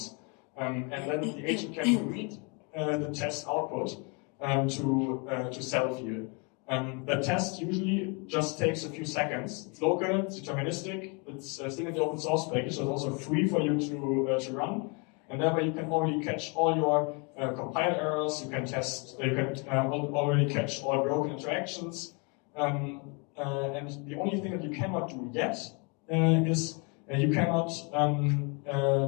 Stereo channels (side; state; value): right; quieter; 33.1 dB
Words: And then the agent can read the test output to self-heal. The test usually just takes a few seconds. It's local, it's deterministic, it's still in the open source package, so it's also free for you to run. And that way you can already catch all your compile errors, you can already catch all broken interactions. And the only thing that you cannot do yet is you cannot